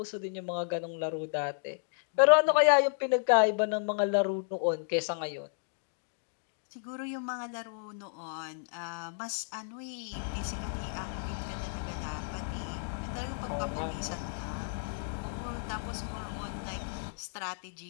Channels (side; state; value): right; silent; digital silence